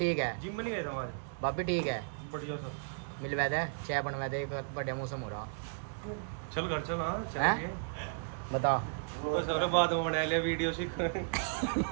है, जिम में नहीं गए थे हमारे, भाभी ठीक है, बढ़िया सब मिलवा दे चाय बनवा दे, बढ़िया मौसम हो रहा। चल घर चल। हाँ हैं बता बस और बाद में बना लिया वीडियो सीख।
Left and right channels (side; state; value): left; silent; digital silence